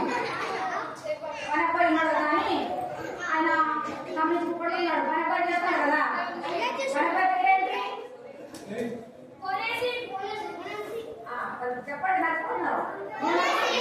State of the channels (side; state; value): both; identical; correlation 1.00